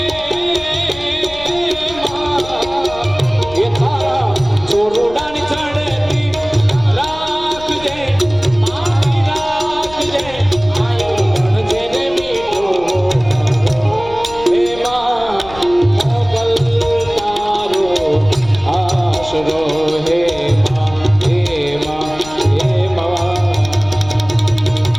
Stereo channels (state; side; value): noise; left; rumble, 17 dB below the sound